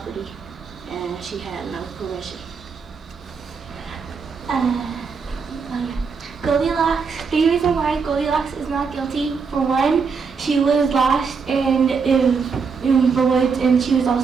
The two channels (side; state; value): left; quieter; 5.4 dB